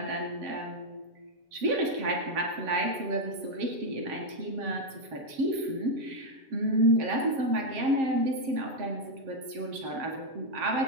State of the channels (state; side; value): late; left; 7.6 ms